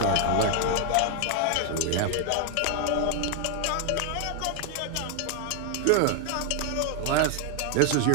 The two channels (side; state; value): both; different; correlation 0.00